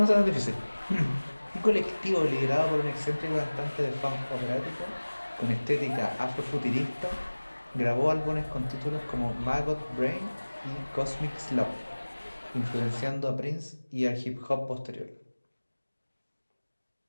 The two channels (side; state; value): both; inverted; correlation -1.00